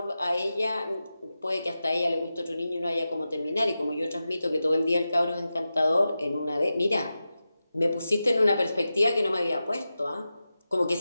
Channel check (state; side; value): inverted; both; correlation -0.92